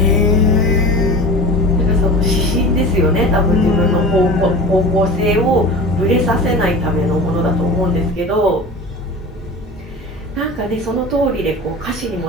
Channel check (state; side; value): normal; both; correlation 0.35